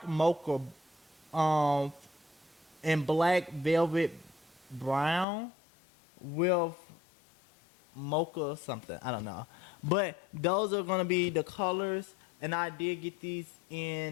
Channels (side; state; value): right; drops out; at 5.2 s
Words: mocha and black velvet brown with mocha something, I don't know, but those are gonna be the colors, and I did get these